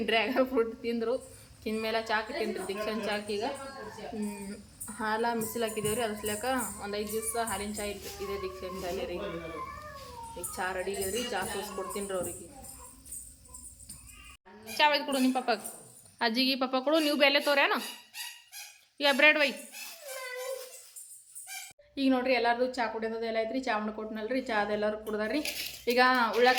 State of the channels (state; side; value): identical; both; correlation 1.00